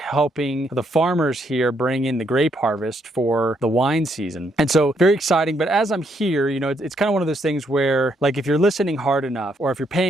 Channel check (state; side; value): normal; both; correlation 0.74